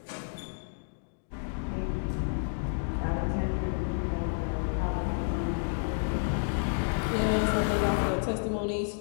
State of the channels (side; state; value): right; silent; digital silence